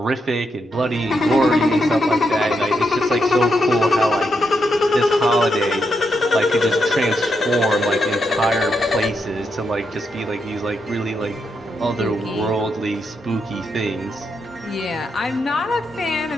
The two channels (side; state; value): both; normal; correlation 0.82